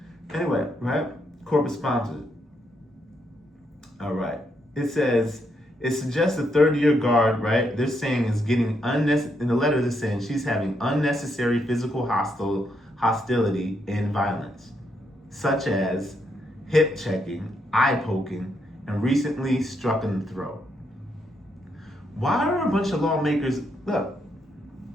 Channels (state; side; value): normal; both; correlation 0.77